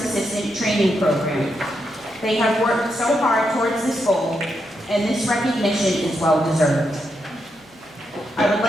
assistant training program. They have worked so hard towards this goal, and this recognition is well deserved. I would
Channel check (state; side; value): normal; both; correlation 0.83